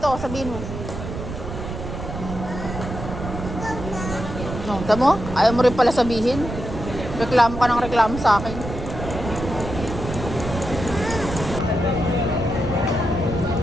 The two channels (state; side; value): noise; right; rumble, 7 dB below the sound